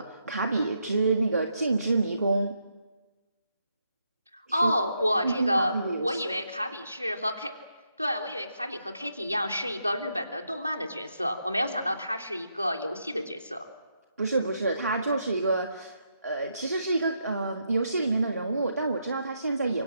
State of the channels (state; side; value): inverted; both; correlation -0.80